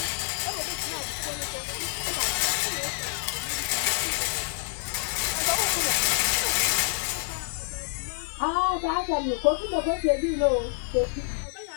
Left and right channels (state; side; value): silent; right; 58 dB below the other